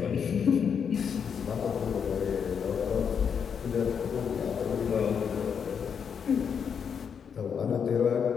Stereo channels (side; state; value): right; quieter; 7.0 dB